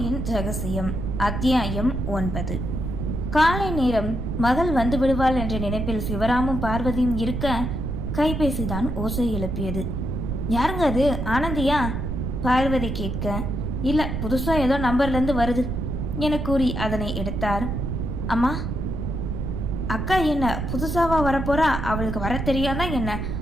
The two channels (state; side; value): noise; right; rumble, 3 dB below the sound